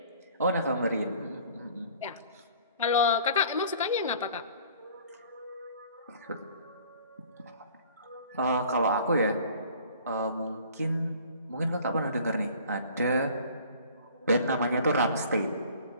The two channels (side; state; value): both; inverted; correlation -0.50